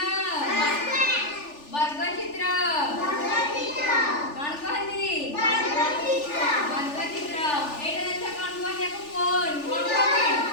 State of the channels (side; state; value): right; late; 3.4 ms